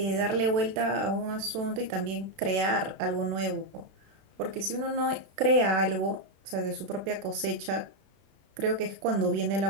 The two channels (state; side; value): late; left; 32 ms